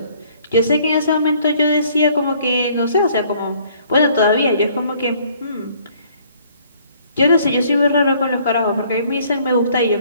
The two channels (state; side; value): inverted; both; correlation -0.60